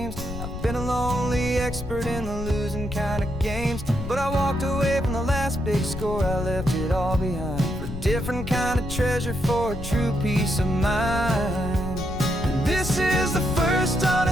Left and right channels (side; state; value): left; noise; rumble, 9 dB below the sound